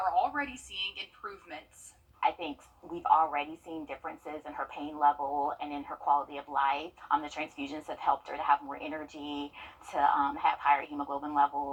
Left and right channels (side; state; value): both; identical; correlation 1.00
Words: already seeing improvements. I think we've already seen differences in her pain level and in her quality of life. The transfusions have helped her to have more energy, to have higher hemoglobin